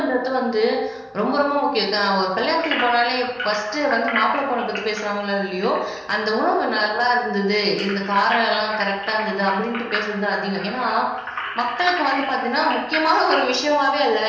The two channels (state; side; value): identical; both; correlation 1.00